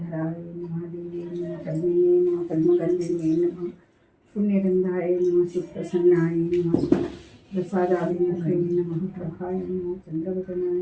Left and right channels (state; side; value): identical; both; correlation 1.00